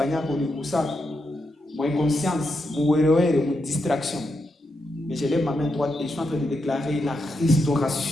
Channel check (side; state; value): both; normal; correlation 0.84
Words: mon inconscience, mon distraction. Mais je lève ma main droite et je suis en train de déclarer la